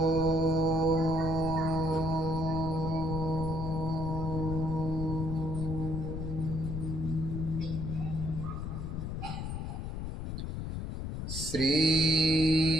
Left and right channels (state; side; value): noise; left; rumble, 4 dB below the sound